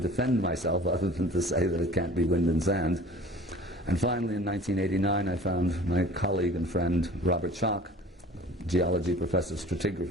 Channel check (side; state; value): both; normal; correlation 0.46